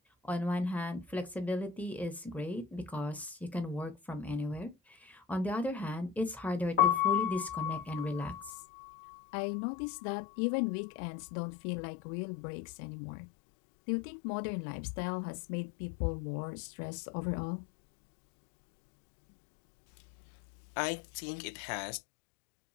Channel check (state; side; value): drops out; right; at 8.5 s